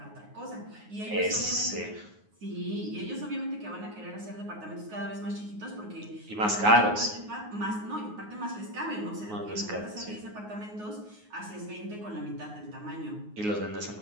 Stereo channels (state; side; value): late; left; 9.5 ms